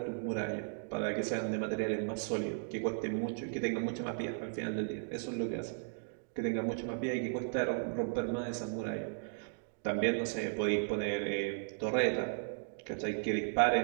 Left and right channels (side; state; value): left; silent; digital silence